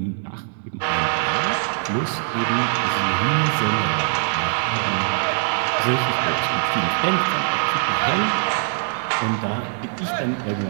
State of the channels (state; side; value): silent; left; digital silence